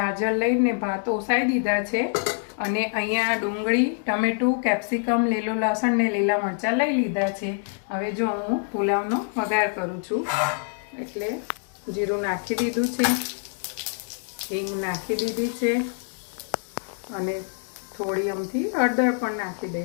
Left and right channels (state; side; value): silent; right; 61 dB below the other